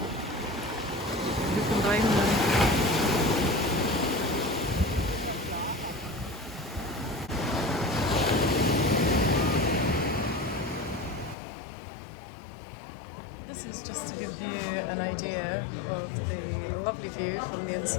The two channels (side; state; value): right; drops out; at 11.4 s